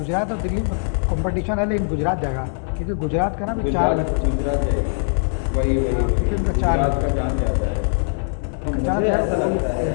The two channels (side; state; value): right; silent; 63 dB below the other